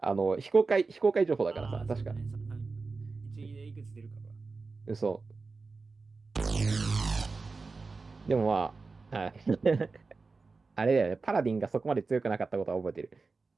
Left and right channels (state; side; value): quieter; left; 4.1 dB